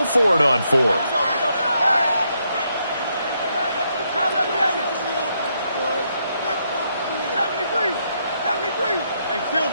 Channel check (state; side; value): inverted; both; correlation -0.77